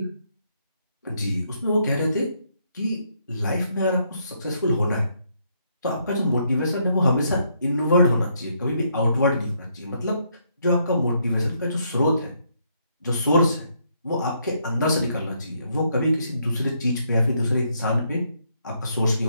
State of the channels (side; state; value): both; inverted; correlation -0.73